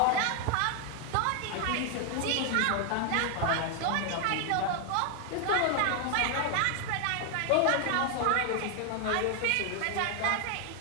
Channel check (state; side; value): different; both; correlation 0.00